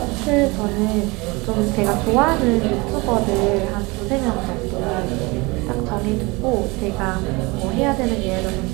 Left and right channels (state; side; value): quieter; left; 25.1 dB